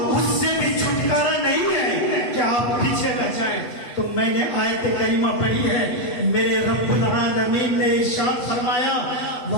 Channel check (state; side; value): late; right; 8.2 ms